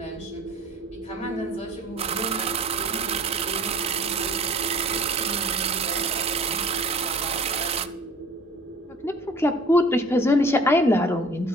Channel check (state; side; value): normal; both; correlation 0.47